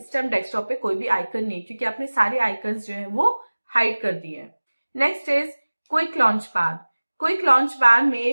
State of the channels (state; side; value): inverted; both; correlation -1.00